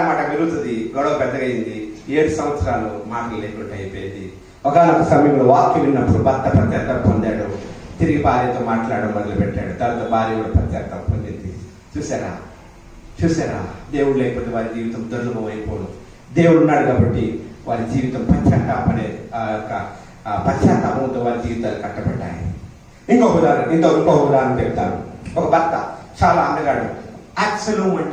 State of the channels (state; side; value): identical; both; correlation 1.00